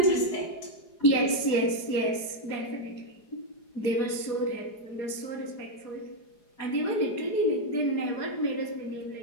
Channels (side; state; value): right; late; 4.8 ms